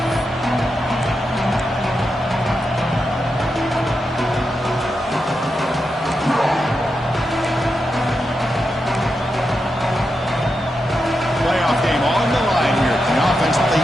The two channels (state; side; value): normal; both; correlation 0.87